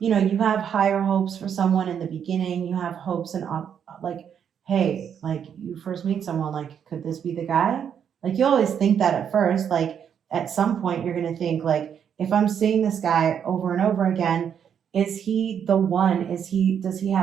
know, you have higher hopes for someone in the beginning. You have hopes and like, hey, like you first meet someone, like, could this be the guy? Like you always think that at first, like at some point you're gonna think like, if I'm seeing this guy over and over again, is he the one? Does he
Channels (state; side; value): quieter; left; 8.2 dB